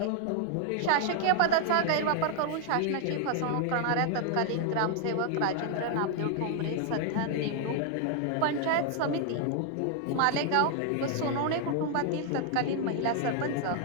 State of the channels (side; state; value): both; different; correlation 0.00